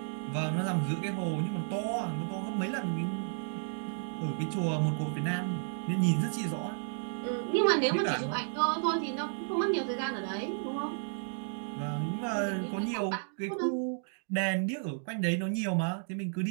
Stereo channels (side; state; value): left; silent; digital silence